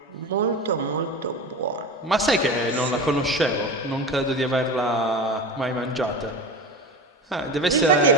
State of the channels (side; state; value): both; normal; correlation 0.28